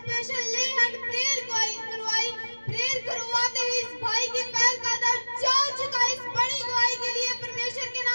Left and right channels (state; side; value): inverted; both; correlation -1.00